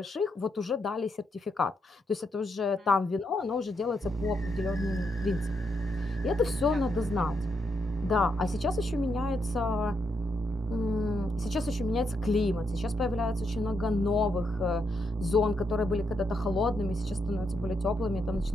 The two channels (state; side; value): normal; both; correlation 0.80